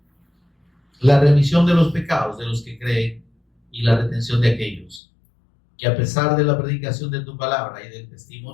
la remisión de los pecados de los que creen y la retención de aquellos que, a pesar de la predicación de tu palabra y del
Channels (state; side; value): drops out; right; at 5.0 s